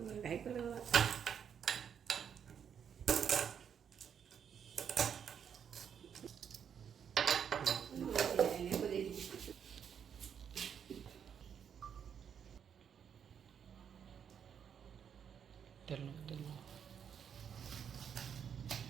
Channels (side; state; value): left; quieter; 7.9 dB